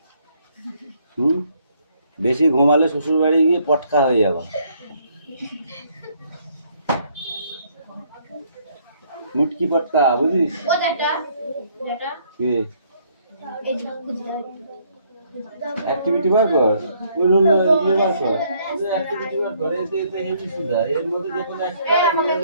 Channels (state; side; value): inverted; both; correlation -0.67